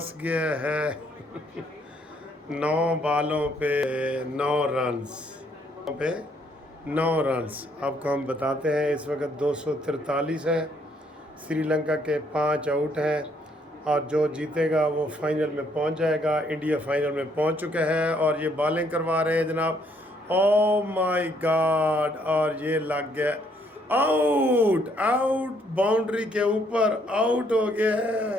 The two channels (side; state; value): both; normal; correlation 0.69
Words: गया है। 9 बालों पे 9 रन्स पे 9 रन्स आपको हम बताते हैं। इस वक्त 243 है। श्रीलंका के 5 आउट हैं और जो जीतेगा वो फाइनल में पहुंच जाएगा। इंडिया फाइनल में पहुंच चुका है और ये बॉलिंग करवा रहे हैं जनाब। ओ माय गॉड, और ये लग गया। आउट आउट, बाउंड्री के ऊपर आउट हो गया